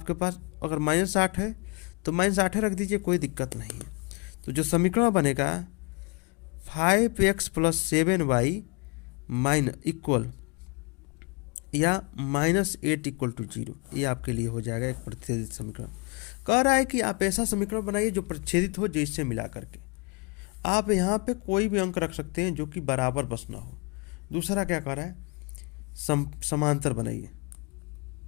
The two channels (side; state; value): right; quieter; 31.2 dB